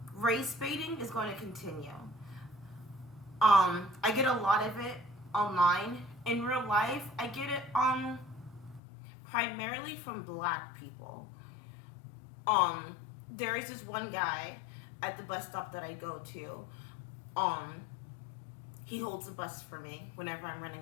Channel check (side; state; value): right; drops out; at 8.8 s